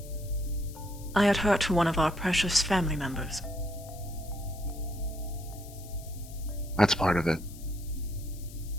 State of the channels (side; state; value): left; noise; hiss, 19 dB below the sound